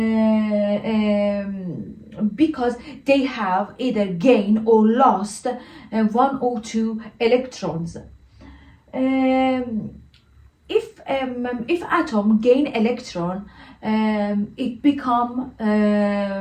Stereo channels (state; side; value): identical; both; correlation 1.00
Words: because they have either gained or lost one or two electrons. If atom gain electron, it become